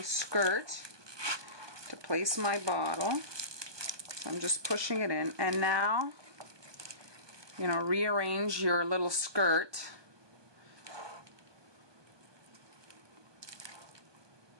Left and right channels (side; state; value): left; late; 1.2 ms